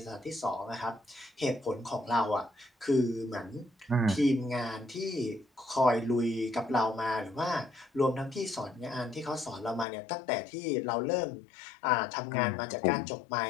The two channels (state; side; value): drops out; right; at 9.9 s